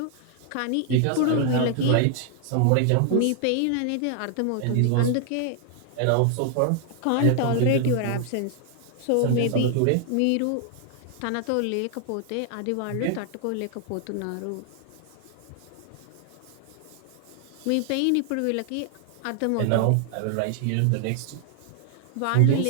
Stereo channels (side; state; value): both; different; correlation 0.00